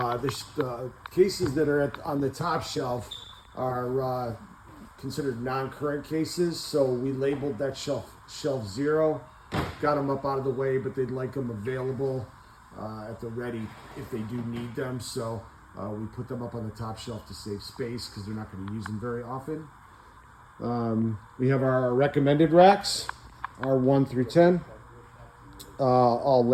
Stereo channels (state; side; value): identical; both; correlation 1.00